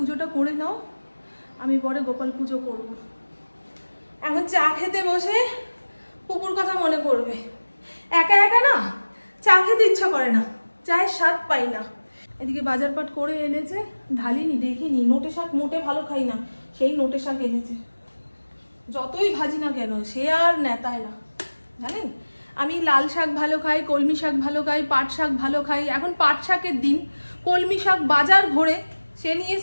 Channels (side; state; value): both; inverted; correlation -1.00